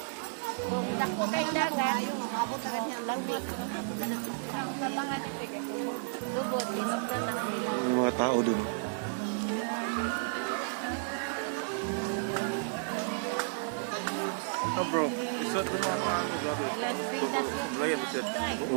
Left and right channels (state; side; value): silent; left; digital silence